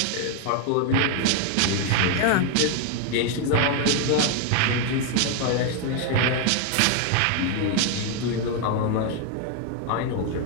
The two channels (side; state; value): both; different; correlation 0.01